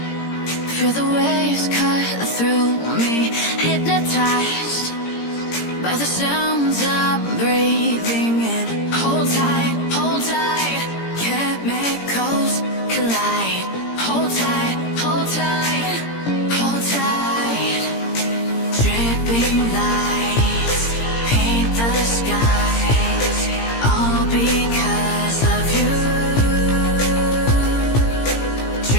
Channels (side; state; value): right; late; 17 ms